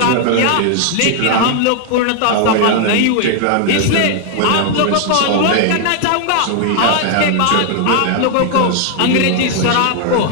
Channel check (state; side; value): different; both; correlation 0.00